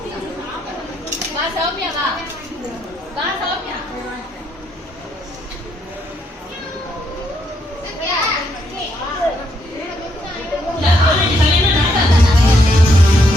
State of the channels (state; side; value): normal; both; correlation 0.75